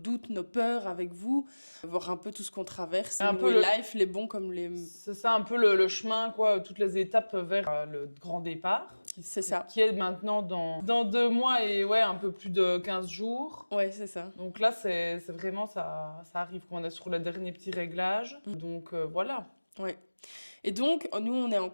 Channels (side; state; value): both; inverted; correlation -1.00